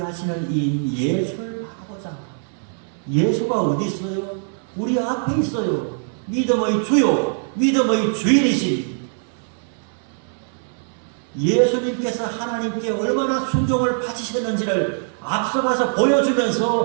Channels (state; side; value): silent; left; 64 dB below the other